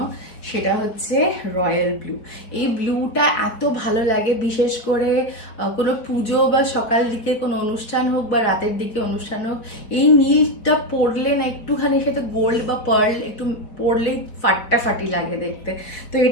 সেটা হচ্ছে রয়্যাল ব্লু। এই ব্লুটা এত ভালো লাগে, বিশেষ করে কোনো পুজো বা সকাল দিকে কোনো অনুষ্ঠান হোক বা রাতের দিকে অনুষ্ঠান হোক, এই নীলটা পরলে না একটুখানি সাথে গোল্ড বা পার্ল একটু পরলেই ফাটাফাটি লাগে দেখতে। তো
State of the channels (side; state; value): right; late; 4.7 ms